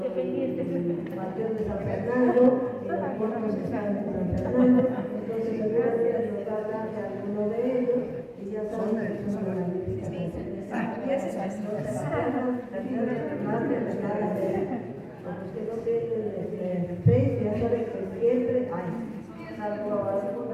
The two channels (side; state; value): both; identical; correlation 1.00